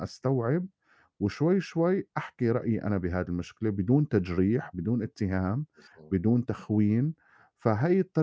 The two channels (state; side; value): identical; both; correlation 1.00